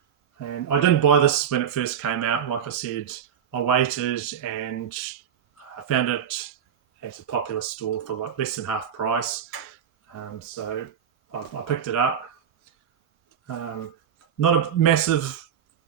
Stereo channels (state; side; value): quieter; left; 8.5 dB